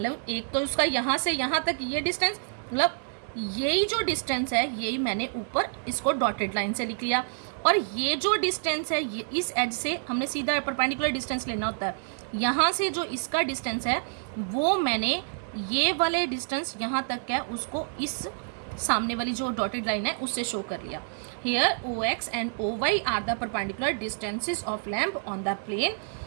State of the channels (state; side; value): silent; left; digital silence